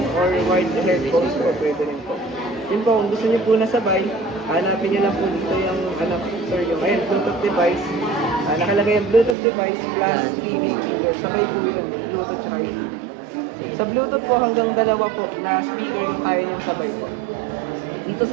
or wired headphones po, pwede rin po. Yun po, kung gusto niyo po na sabay, hanapin niyo lang po dito yung, yung Bluetooth device. Nakalagay yung Bluetooth device plus TV speaker. Sabay po yun, Bluetooth tsaka TV. Sa Bluetooth po, hanggang dalawa po na speaker yung kaya niyang sabay po. Dito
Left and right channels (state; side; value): drops out; left; at 9.3 s